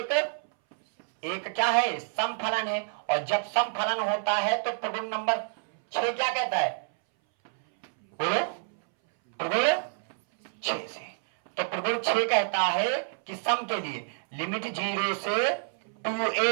एक क्या है? सम फलन है, और जब सम फलन होता है तो प्रगुण नंबर 6 क्या कहता है? बोलो, प्रगुण 6 से, तो प्रगुण 6 कहता है कि सम के लिए लिमिट 0 से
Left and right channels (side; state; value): left; silent; 59 dB below the other